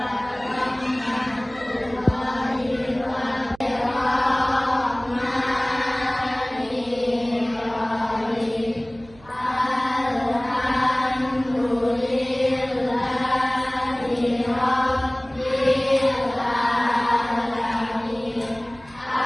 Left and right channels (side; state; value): right; noise; hum, 24 dB below the sound